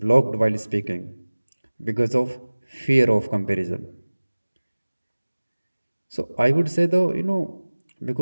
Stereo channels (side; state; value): both; inverted; correlation -1.00